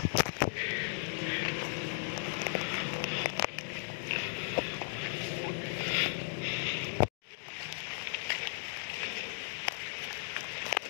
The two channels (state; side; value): silent; right; digital silence